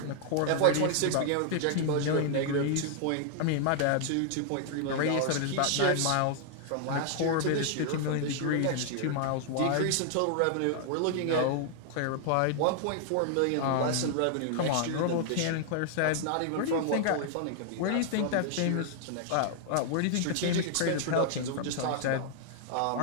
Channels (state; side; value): different; both; correlation -0.01